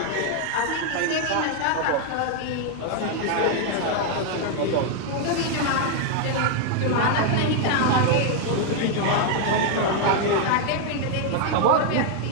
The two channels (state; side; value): different; both; correlation 0.00